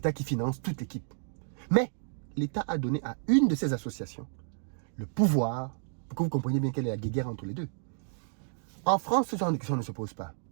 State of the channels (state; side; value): silent; left; digital silence